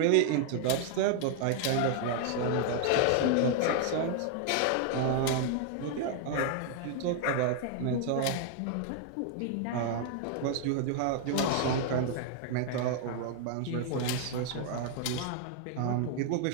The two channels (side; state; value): both; different; correlation 0.00